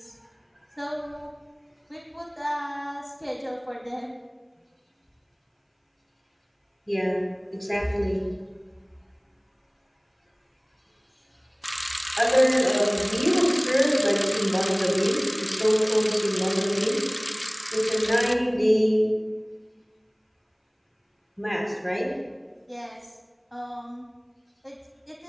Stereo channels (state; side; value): identical; both; correlation 1.00